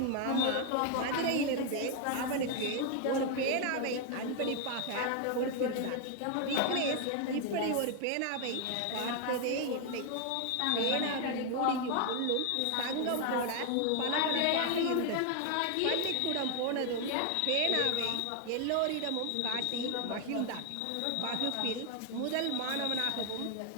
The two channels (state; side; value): different; both; correlation 0.00